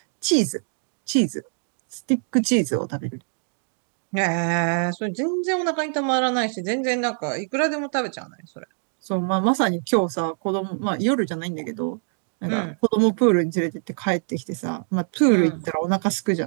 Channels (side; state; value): left; silent; 63 dB below the other